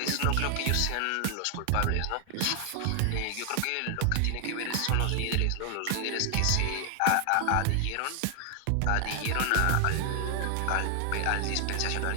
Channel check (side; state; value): both; different; correlation 0.00